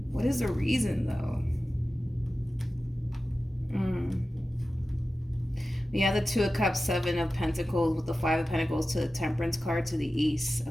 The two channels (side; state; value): both; normal; correlation 0.94